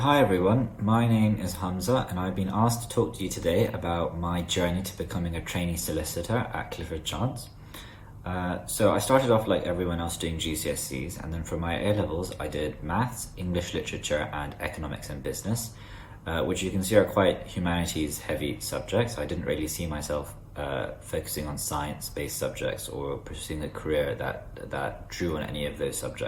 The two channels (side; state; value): both; identical; correlation 1.00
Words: everyone, my name is Hamza and I've been asked to talk to you today about my journey to becoming a trainee solicitor at Clifford Chance. So I started off like everyone else doing GCSEs, and then for my A-levels I did maths, English literature and economics and business, which you can see are quite humanities heavy subjects. I didn't really see myself focusing on science-based subjects or pursuing a career that drew on any of those